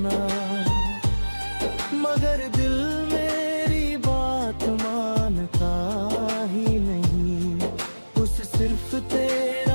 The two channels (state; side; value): inverted; both; correlation -1.00